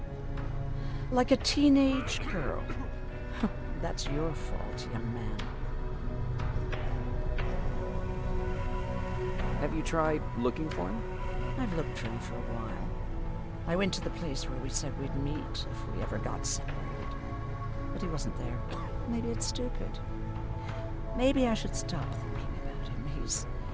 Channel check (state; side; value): identical; both; correlation 1.00